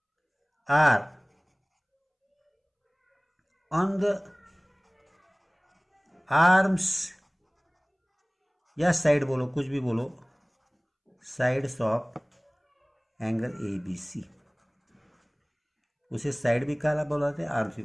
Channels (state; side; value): identical; both; correlation 1.00